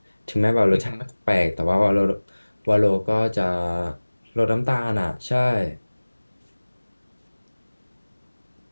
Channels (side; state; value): both; inverted; correlation -1.00